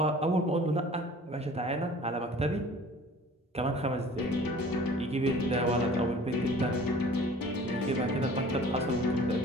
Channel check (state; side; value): normal; both; correlation 0.47